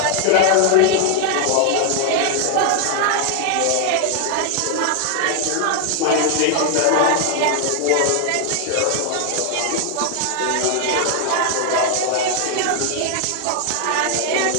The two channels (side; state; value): both; different; correlation 0.00